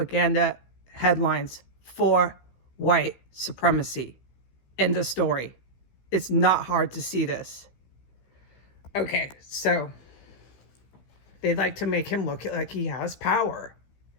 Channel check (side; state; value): right; late; 15 ms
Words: headlines for white supremacy. End of story. It's not hard to see this. Okay, so they'd like to make him look like he has power,